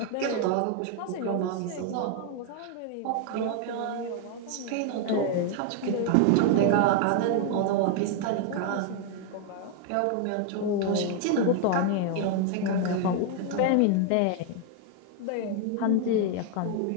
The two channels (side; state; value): both; different; correlation 0.01